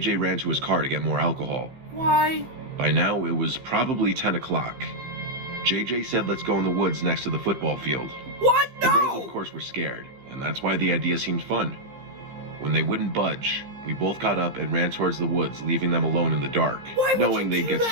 ran to his car to get more alcohol. Why? By now, it was probably 10 o'clock. JJ said, let's go in the woods next to the football field. What? The girls, No! of course, were scared, and that's why the idea seemed fun. When they wouldn't budge, we both got up and ran towards the woods, leaving them alone in the dark, Why would knowing you they'd do get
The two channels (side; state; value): left; late; 15 ms